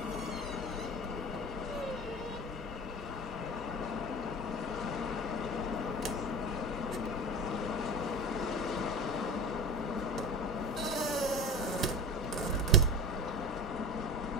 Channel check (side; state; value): both; normal; correlation 0.32